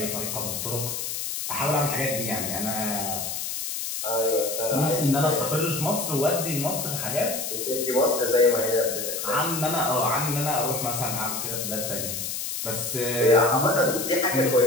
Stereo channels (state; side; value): noise; left; hiss, 4 dB below the sound